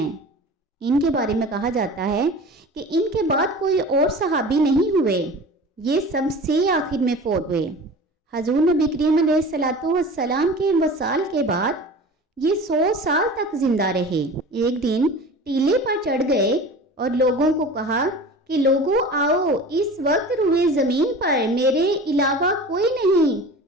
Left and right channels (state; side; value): normal; both; correlation 0.37